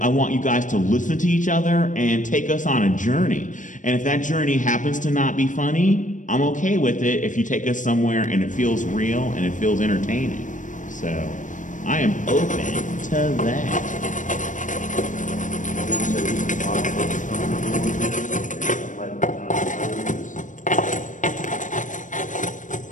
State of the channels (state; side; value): late; right; 0.37 ms